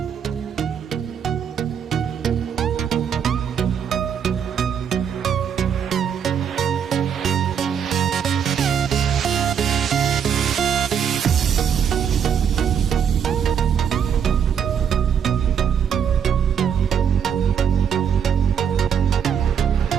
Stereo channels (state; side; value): quieter; left; 7.9 dB